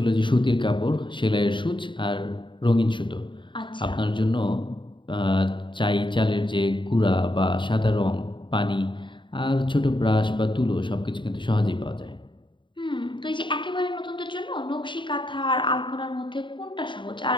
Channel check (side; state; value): right; late; 0.23 ms